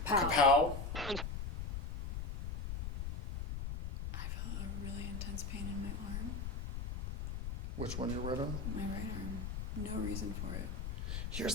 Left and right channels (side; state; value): left; noise; rumble, 4 dB below the sound